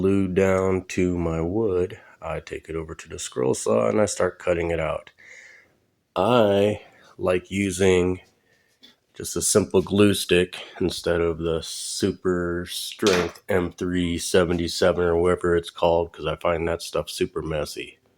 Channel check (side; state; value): both; identical; correlation 1.00